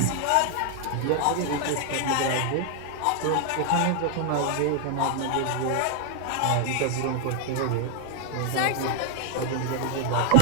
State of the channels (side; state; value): both; different; correlation 0.00